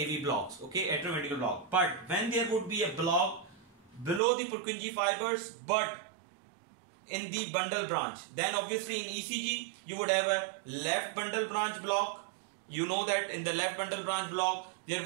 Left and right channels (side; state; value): left; drops out; at 4.2 s